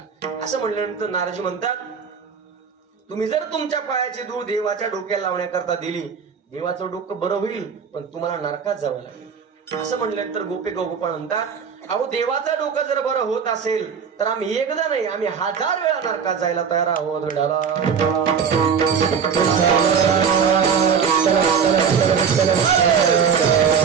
असं म्हणल्यानंतर नारदजी म्हणतात तुम्ही जर तुमच्या पायाची धूळ देवाच्या डोक्याला लावण्याकरता दिली, देवाचं डोकं बरं होईल, पण तुम्हाला नरकात जावं लागेल. असं म्हणल्यानंतर गोपिका गोपाळ म्हणतात अहो देवाचं डोकं जर बरं होत असेल तर आम्ही एकदा नाही, आम्ही 1000 वेळा नरकात जायला तयार आहोत.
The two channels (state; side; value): quieter; left; 6.7 dB